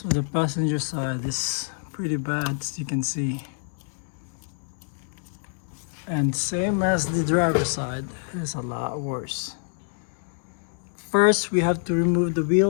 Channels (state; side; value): silent; right; 61 dB below the other